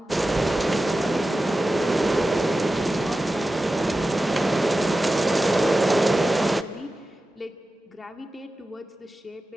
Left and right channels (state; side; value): normal; both; correlation 0.94